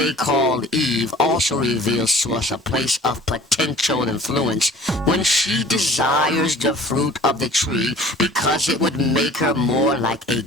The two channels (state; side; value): normal; both; correlation 0.48